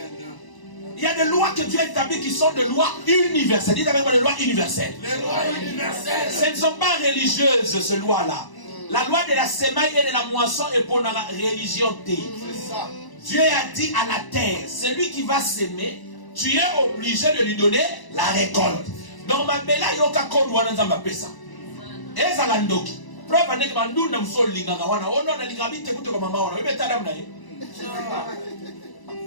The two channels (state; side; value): late; right; 1.0 ms